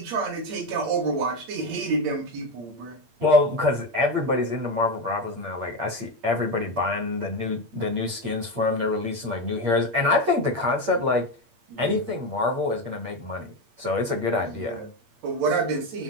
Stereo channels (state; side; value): late; left; 8.6 ms